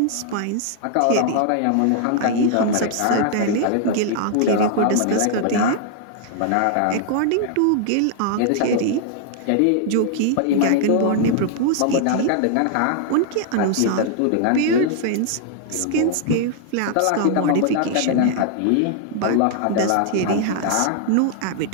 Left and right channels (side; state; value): both; different; correlation 0.00